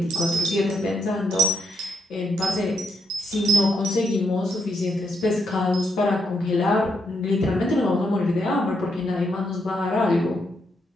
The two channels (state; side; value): normal; both; correlation 0.79